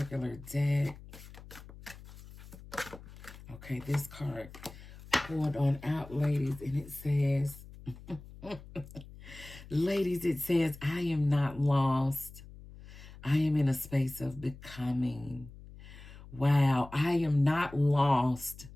deck. Okay, this card pulled on out, ladies, and it says, ladies, it says, I am not lost. I am in a space of becoming. Wow, I am not lost.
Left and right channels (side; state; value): left; noise; hum, 17 dB below the sound